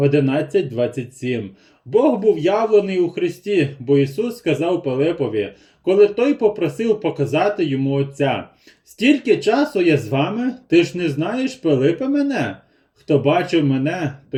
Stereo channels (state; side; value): identical; both; correlation 1.00